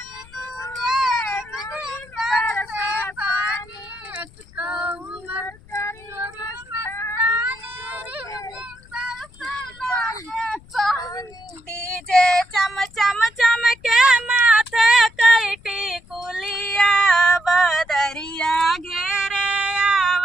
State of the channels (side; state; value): left; noise; rumble, 24 dB below the sound